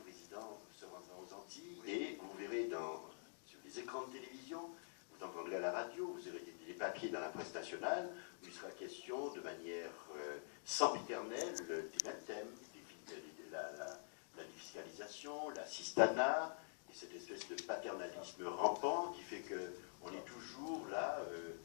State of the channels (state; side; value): silent; right; digital silence